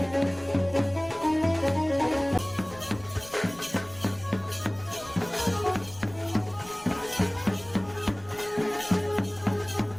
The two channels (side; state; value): left; noise; rumble, 21 dB below the sound